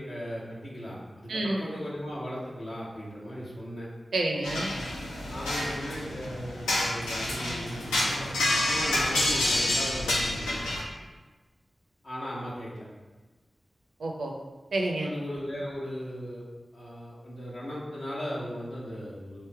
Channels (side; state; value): both; normal; correlation 0.90